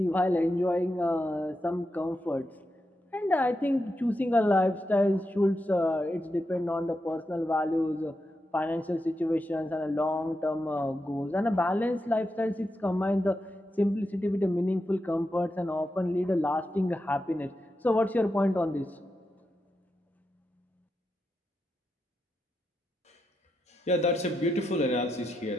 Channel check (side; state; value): both; normal; correlation 0.87